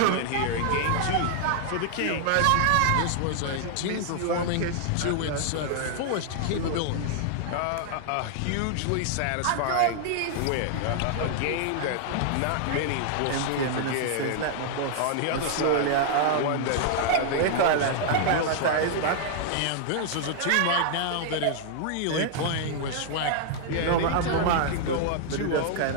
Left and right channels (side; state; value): both; different; correlation 0.00